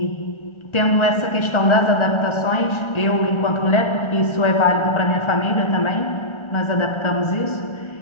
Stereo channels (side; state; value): right; late; 1.4 ms